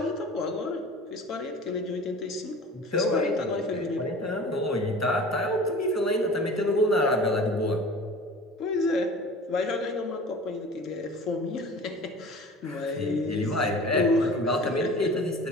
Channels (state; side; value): normal; both; correlation 0.40